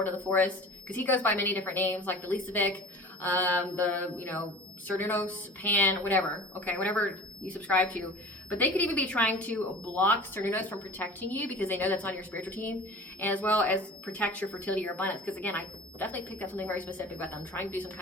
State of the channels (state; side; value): normal; both; correlation 0.40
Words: of the Forest, because he goes by many different names, like the Lisavic, the, you know, Cernunnos, Pan, whatever, okay, whatever you subscribe to. But they could even be trying to block Cernunnos from protecting you because they know that's on your spiritual team, and as well as protect your fertility, your abundance. Because again, I definitely picked up something very specific about them, trying to do some